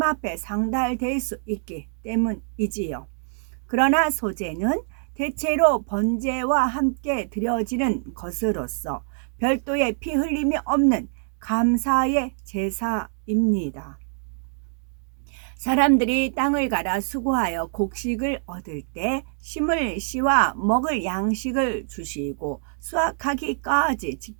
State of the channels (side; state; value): left; silent; digital silence